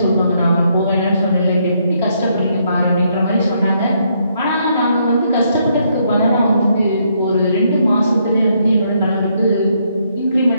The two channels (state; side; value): inverted; both; correlation -0.74